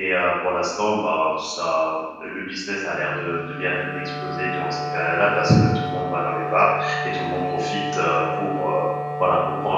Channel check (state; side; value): identical; both; correlation 1.00